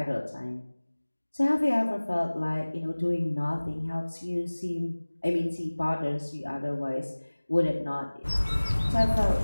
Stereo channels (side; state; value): both; inverted; correlation -1.00